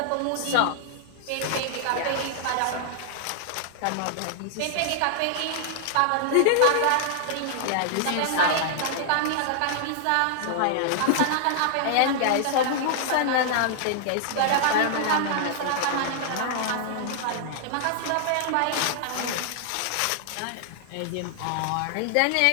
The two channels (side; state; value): both; different; correlation -0.01